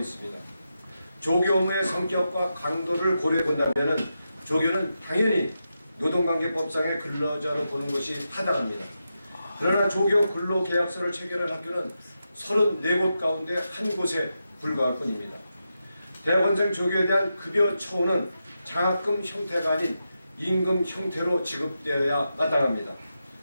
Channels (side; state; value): both; inverted; correlation -0.88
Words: 조교 업무의 성격과 강도를 고려해 본다면은 조교는 당연히 노동관계법상의 근로자로 보는 것이 타당합니다. 그러나 조교 근로계약서를 체결한 학교는 34곳 가운데 한 곳에 불과할 뿐입니다. 대학원생 조교에 대한 급여 처우는 장학금 형태가 아닌 임금 형태로 지급되어야 마땅합니다.